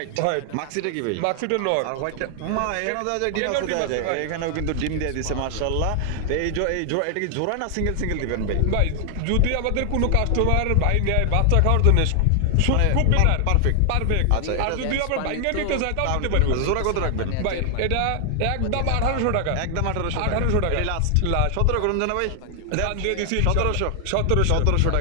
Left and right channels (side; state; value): both; different; correlation 0.00